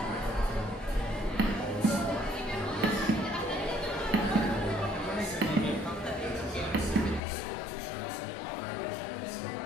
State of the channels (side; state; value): right; drops out; at 7.2 s